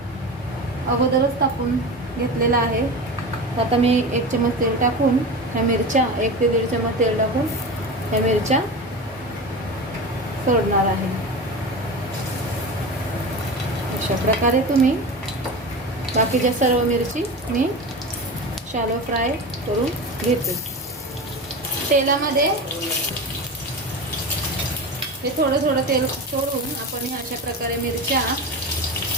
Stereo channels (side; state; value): both; normal; correlation 0.27